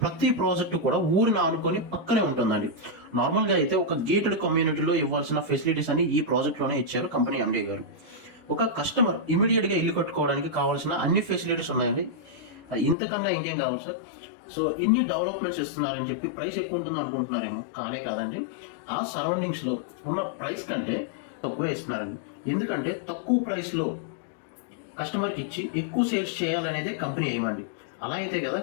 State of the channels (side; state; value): right; drops out; at 13.0 s